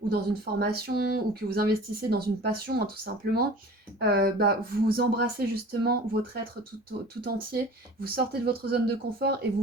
ou dans une formation ou que vous investissez dans une passion hein, tout simplement, bah, vous embrassez justement votre être tout entier, vous sortez de votre zone de confort et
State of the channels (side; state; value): both; normal; correlation 0.42